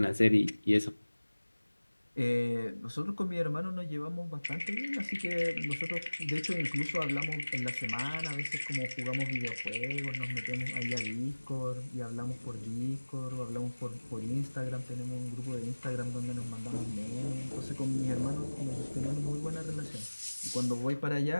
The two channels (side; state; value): both; inverted; correlation -1.00